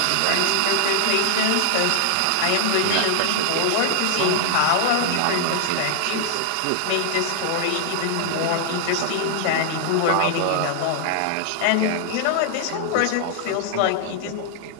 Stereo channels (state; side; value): different; both; correlation 0.00